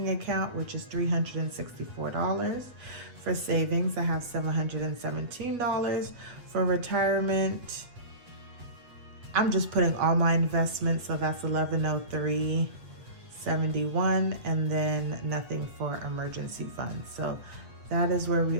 account, which is $364. For savings, I have $717. For retirement, I'm just putting all my investments, so that's $1103.71, and then nothing for emergency funds. So that is where we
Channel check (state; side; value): late; left; 8.2 ms